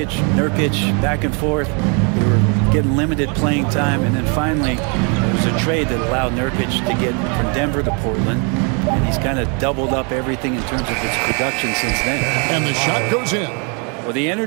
Nurkic, back and forth. They were getting limited playing time, and then finally there was a trade that allowed Nurkic to get from Denver to Portland, and he's kind of doubled up everything in terms of his production since then. And the shot goes in. Well, the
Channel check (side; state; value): left; quieter; 35.8 dB